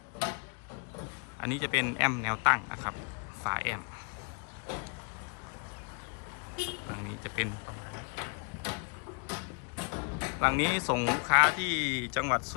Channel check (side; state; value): right; quieter; 37.9 dB